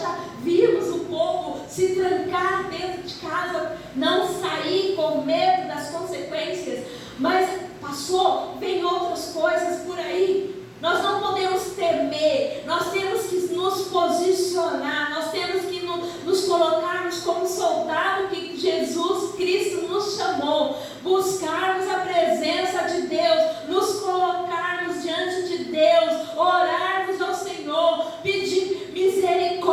já vimos o povo se trancar dentro de casa, não sair com medo das consequências, mas passou, vem outras coisas por aí. Nós não podemos temer, nós temos que nos posicionar, nós temos que nos colocarmos como soldado que Jesus Cristo nos chamou, buscarmos a presença de Deus, nos colocarmos diante de Deus, orarmos ao Senhor, pedir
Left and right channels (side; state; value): both; identical; correlation 1.00